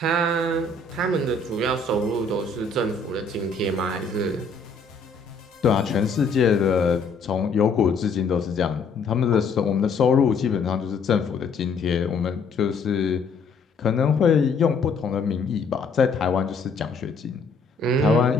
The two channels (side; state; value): right; quieter; 4.1 dB